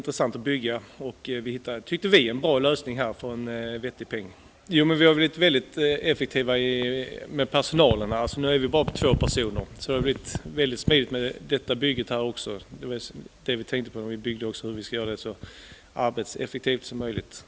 att bygga och tyckte vi en bra lösning här för en vettig peng. Jo, men vi har blivit väldigt effektiva med personalen här. Alltså nu är vi bara på 2 personer. Så det har blivit väldigt smidigt med detta bygget här också. Det var det vi tänkte på när vi byggde också, hur vi ska göra det så arbetseffektivt som möjligt.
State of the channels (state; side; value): identical; both; correlation 1.00